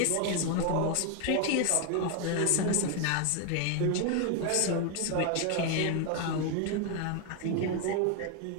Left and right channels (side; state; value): both; different; correlation 0.01